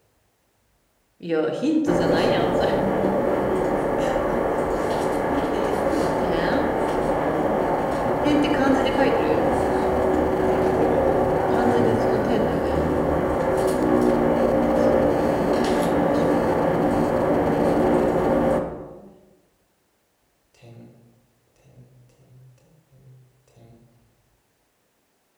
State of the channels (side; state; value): both; identical; correlation 1.00